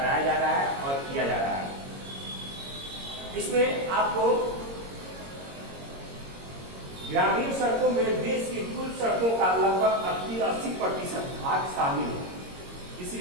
जा रहा है और किया जा रहा है। इसमें आपको ग्रामीण सड़कों में देश की कुल सड़कों का लगभग 80% भाग शामिल है।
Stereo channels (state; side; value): late; left; 22 ms